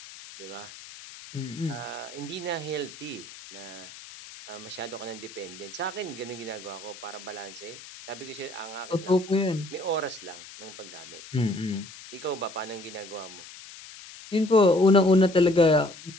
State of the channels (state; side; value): noise; left; hiss, 16 dB below the sound